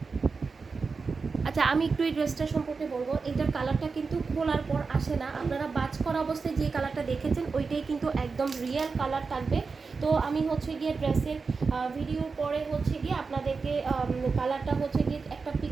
আচ্ছা, আমি একটু এই ড্রেসটা সম্পর্কে বলবো। এইটার কালারটা কিন্তু খোলার পর আসে না, আপনারা বাজ করা অবস্থায় যে কালারটা দেখেছেন ওইটাই কিন্তু একদম রিয়েল কালার থাকবে। তো আমি হচ্ছে গিয়ে ড্রেসের ভিডিওর পরে হচ্ছে গিয়ে আপনাদেরকে কালারটা হচ্ছে গিয়ে একটা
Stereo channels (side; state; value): left; quieter; 4.7 dB